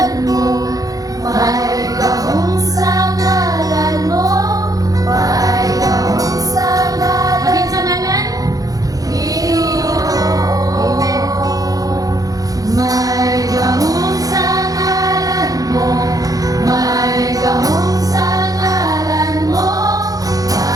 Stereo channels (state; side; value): late; left; 0.17 ms